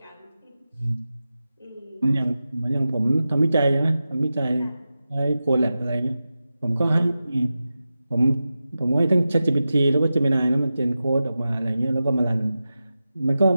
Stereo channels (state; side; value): inverted; both; correlation -0.93